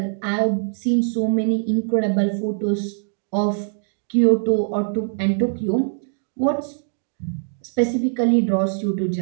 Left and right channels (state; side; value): silent; left; digital silence